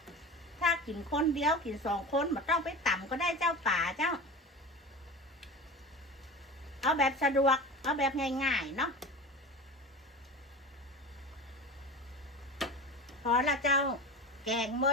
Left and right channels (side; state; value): both; normal; correlation 0.32